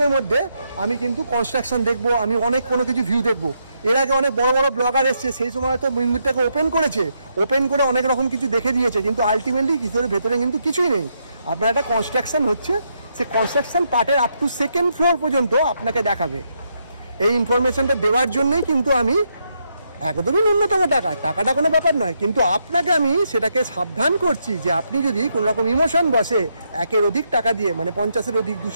মধ্যে আমি কিন্তু কনস্ট্রাকশন দেখবো, আমি অনেক কোনো কিছু ভিউ দেখবো। এর আগে অনেক বড় বড় ব্লগার এসছে, সেই সময় তো মন্দিরটাকে ওপেন করেছে, ওপেন করে অনেক রকম কিছু দেখে দিয়েছে, কিন্তু আলটিমেটলি কিছুর ভেতরে কিন্তু কিছুই নেই। আপনার একটা কনস্ট্রাকশন হচ্ছে, সে কনস্ট্রাকশন পার্টের আপ টু সেকেন্ড ফ্লোর পর্যন্ত আপনাকে দেখাবে। এই ইনফরমেশনটা দেওয়ার জন্যই কিন্তু আমি একদমই ন্যূনতম টাকাটা কোনো ব্যাপার নয়, কিন্তু আপনাকে আমি সেটাকে সাবধান করছি যে আপনি যদি কোনো রকম ইমোশন বসে একের অধিক টাকা দিয়ে মানে 50-এর অধিক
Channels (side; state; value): both; inverted; correlation -0.79